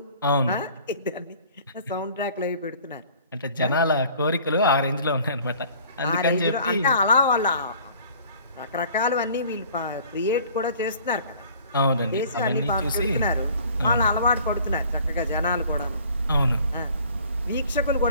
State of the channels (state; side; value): inverted; both; correlation -0.51